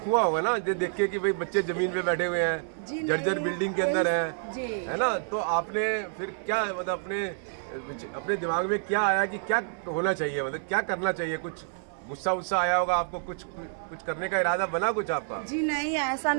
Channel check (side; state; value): left; silent; digital silence